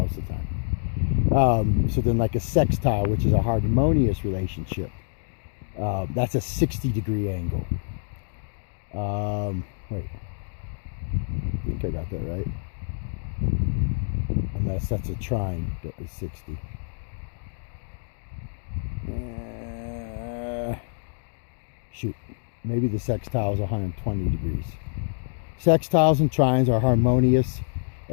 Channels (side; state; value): right; silent; digital silence